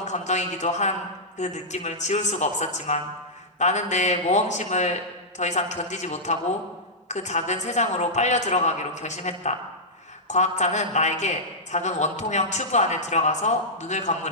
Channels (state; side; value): normal; both; correlation -0.10